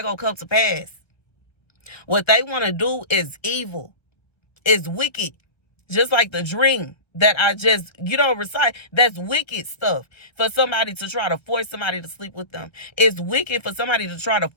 gonna come to pass. What they want to do is evil, is wicked, just like the dream that I just, recite. That's wicked stuff for somebody to try to force somebody to sleep with them. It's wicked for somebody to try to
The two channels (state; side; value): late; right; 1.3 ms